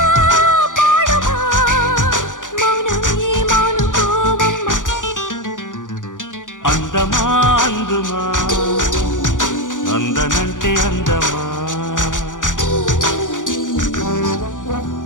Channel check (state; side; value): late; right; 0.88 ms